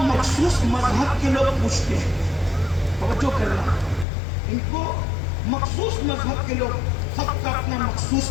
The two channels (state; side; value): drops out; right; at 4.0 s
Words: مخصوص مذہب کے لوگ پوچھتے ہیں. توجہ کرنا، ان کو مخصوص مذہب کے لوگ، سب کا اپنا مخصوص